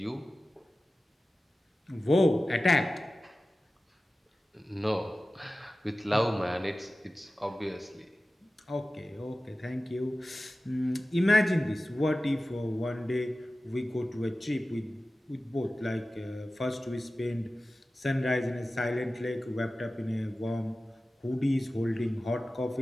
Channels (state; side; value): normal; both; correlation 0.95